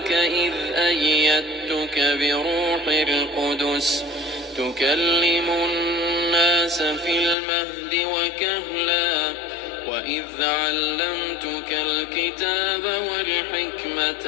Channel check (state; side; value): drops out; right; at 7.4 s